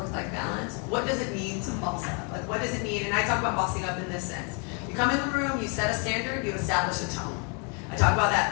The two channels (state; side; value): quieter; right; 33.9 dB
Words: balance. What does it mean to boss up? Like, what does it mean? And I talk about bossing up in this sense. You come in the room, you set a standard, you establish a tone. I talk about